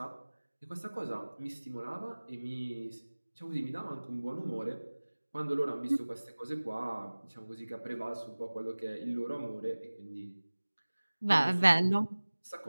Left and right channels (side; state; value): both; inverted; correlation -1.00